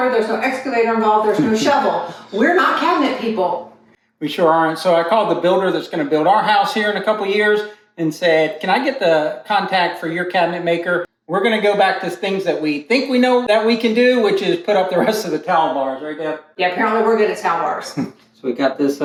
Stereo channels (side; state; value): both; identical; correlation 1.00